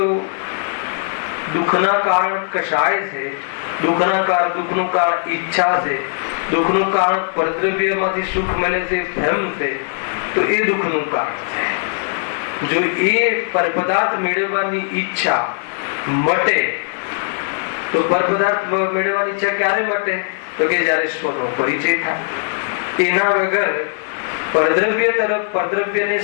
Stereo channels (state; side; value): silent; right; digital silence